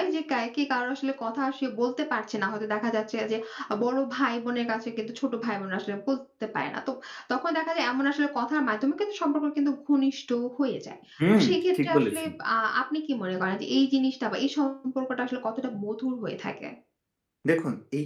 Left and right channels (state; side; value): identical; both; correlation 1.00